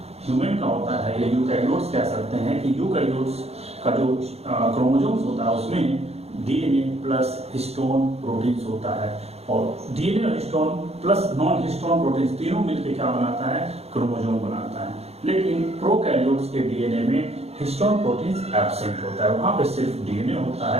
ह्यूमन का होता है या यूकैरियोट्स कह सकते हैं कि यूकैरियोट्स का जो क्रोमोसोम्स होता है उसमें डीएनए प्लस हिस्टोन प्रोटीन्स होता है। और डीएनए और histone plus non histone proteins तीनों मिलकर क्या बनाता है, क्रोमोसोम बनाता है। लेकिन प्रोकैरियोट्स के डीएनए में हिस्टोन प्रोटीन्स एब्सेंट होता है, वहां पे सिर्फ डीएनए होता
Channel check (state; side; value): late; left; 0.30 ms